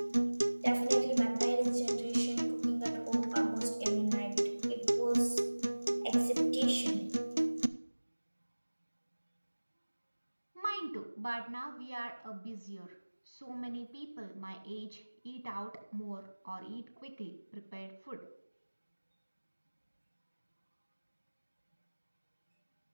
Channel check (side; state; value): both; inverted; correlation -1.00